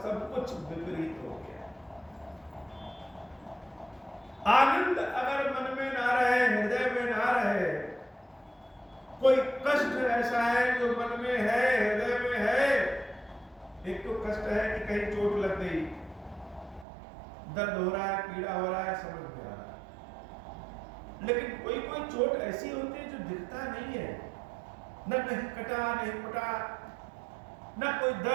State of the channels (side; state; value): left; drops out; at 16.9 s